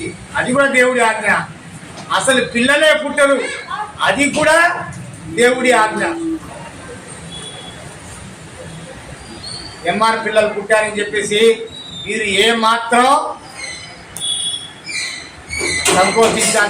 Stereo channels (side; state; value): both; identical; correlation 1.00